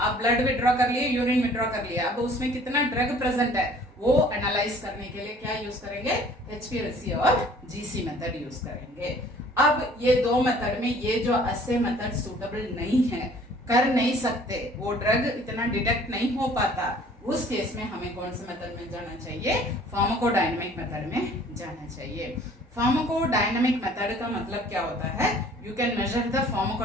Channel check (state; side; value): normal; both; correlation 0.53